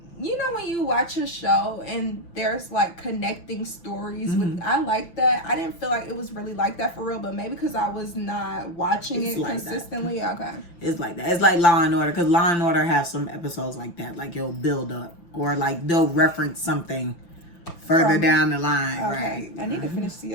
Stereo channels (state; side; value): late; right; 5.8 ms